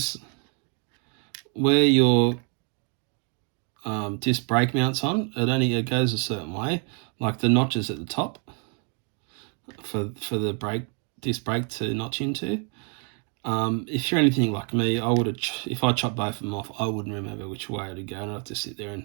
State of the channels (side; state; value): left; quieter; 38.3 dB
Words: where your disc brake mounts on, it goes a certain way, like the notches at the top for the disc brake to notch into. If you're anything like me, I would have, if I chopped both of them off, I wouldn't remember which way to go, and I'd have to sit there